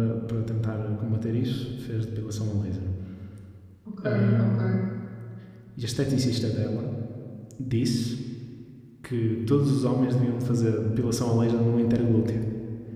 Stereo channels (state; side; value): identical; both; correlation 1.00